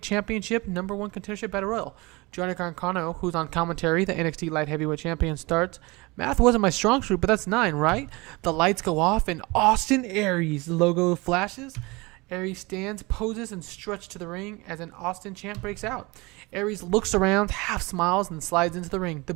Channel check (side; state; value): left; quieter; 24.4 dB